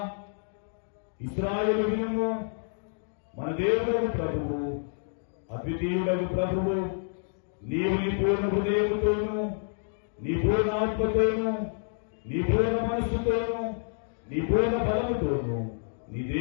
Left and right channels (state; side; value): silent; right; digital silence